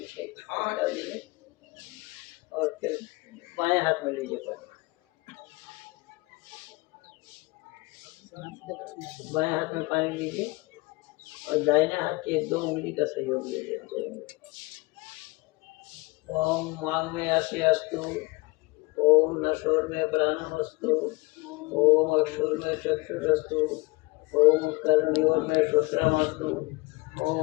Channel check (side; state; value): right; quieter; 23.8 dB